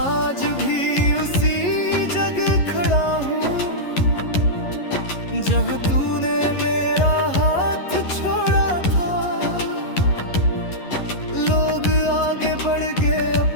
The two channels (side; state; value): right; late; 11 ms